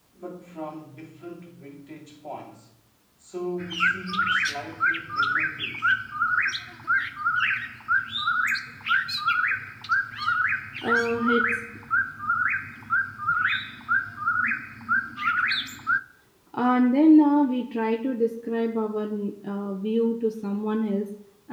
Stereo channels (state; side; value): identical; both; correlation 1.00